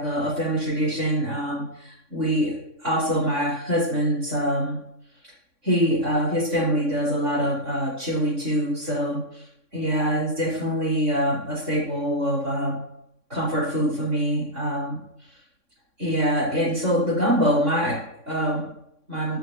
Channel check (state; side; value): late; left; 3.6 ms